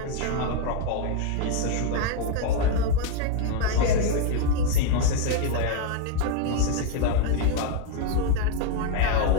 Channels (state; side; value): different; both; correlation 0.01